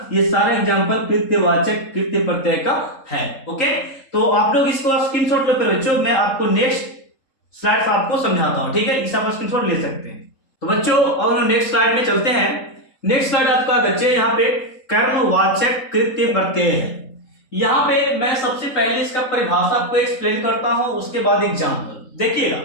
ये सारे एग्जाम्पल कृत्यवाचक कृत्य प्रत्यय का है। ओके, तो आप लोग इसको स्क्रीनशॉट लो फिर बच्चों, मैं आपको नेक्स्ट स्लाइड आपको समझाता हूं। ठीक है, इस आप स्क्रीनशॉट ले सकते हैं। तो बच्चों और नेक्स्ट स्लाइड में चलते हैं। नेक्स्ट स्लाइड आपका बच्चे यहाँ पे कर्मवाचक कृत्य प्रत्यय है। यहाँ पे मैं सबसे पहले इसका परिभाषा आपको एक्सप्लेन करता हूं, उसके बाद एग्जाम्पल देखिएगा।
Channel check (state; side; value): late; right; 3.7 ms